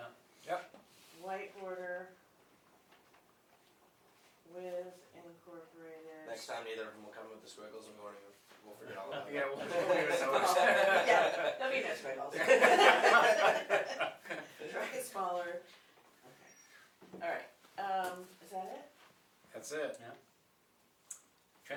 Yep. White border with incorporated. Next time, neither of them will come with the squiggles, and we'll forget all about it. Yeah, we'll leave it notice. Yeah, there'll be no squiggles. Try it smaller. Okay. Alright, is that it? That's it.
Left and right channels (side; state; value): both; identical; correlation 1.00